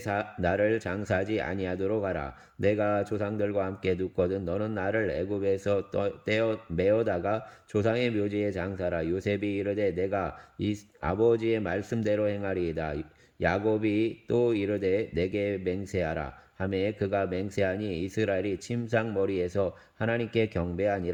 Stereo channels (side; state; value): both; identical; correlation 1.00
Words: 나를 장사하지 아니하도록 하라. 내가 조상들과 함께 눕거든 너는 나를 애굽에서 떼어 메어다가 조상의 묘지에 장사라. 요셉이 이르되 내가 이 아버지의 말씀대로 행하리이다. 야곱이 또 이르되 내게 맹세하라. 하매 그가 맹세하니 이스라엘이 침상 머리에서 하나님께